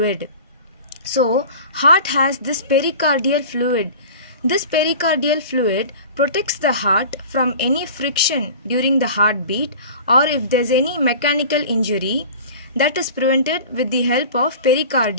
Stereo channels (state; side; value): inverted; both; correlation -0.39